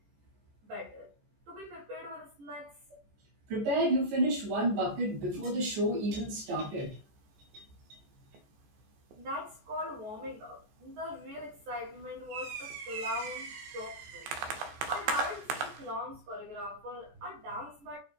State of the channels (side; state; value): left; late; 14 ms